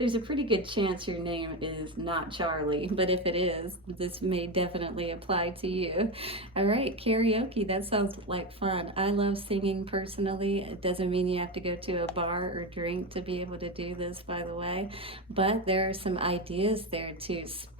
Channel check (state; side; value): normal; both; correlation 0.16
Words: a pretty good chance your name is not Charlie, but if it is, this may definitely apply to you. All right, karaoke, that sounds like fun. I love singing personally. It doesn't mean you have to go to a bar or drink to be able to do this, by the way, but there are some ideas there to